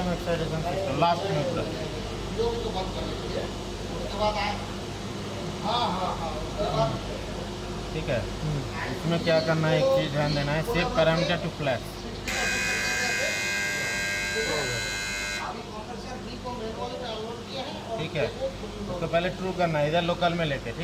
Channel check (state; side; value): identical; both; correlation 1.00